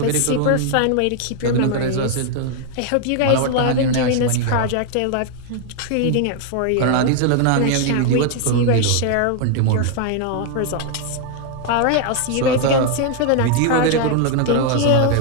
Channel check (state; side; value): different; both; correlation 0.00